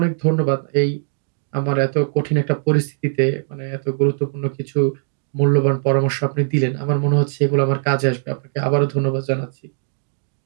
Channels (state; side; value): silent; left; digital silence